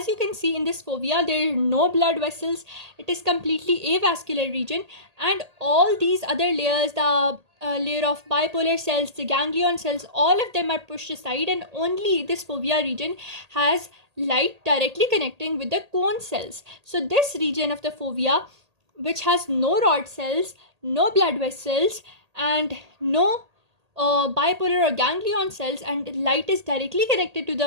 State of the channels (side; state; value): left; late; 1.8 ms